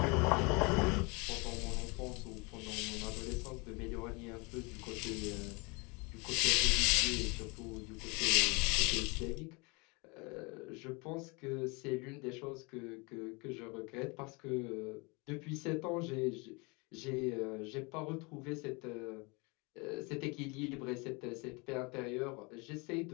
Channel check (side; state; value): right; quieter; 28.9 dB